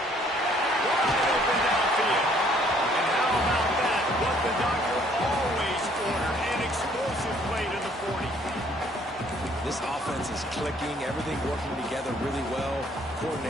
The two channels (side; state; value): both; normal; correlation 0.62